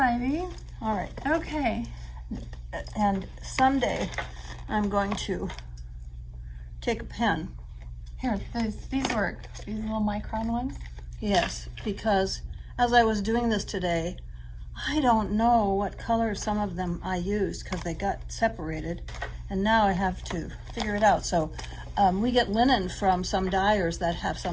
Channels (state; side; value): identical; both; correlation 1.00